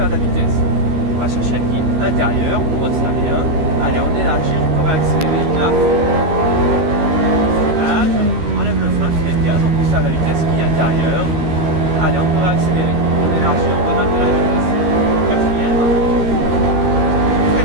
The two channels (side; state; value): left; late; 13 ms